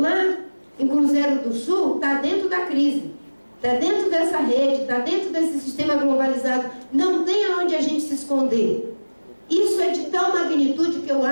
em Cruzeiro do Sul, está dentro da crise. Está dentro dessa rede, está dentro desse sistema globalizado. Não tem aonde a gente se esconder. Isso é de tal magnitude que eu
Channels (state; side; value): inverted; both; correlation -1.00